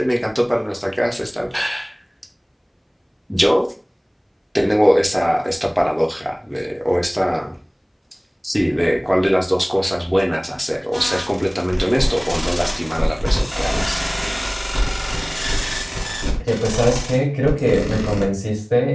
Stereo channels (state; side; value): identical; both; correlation 1.00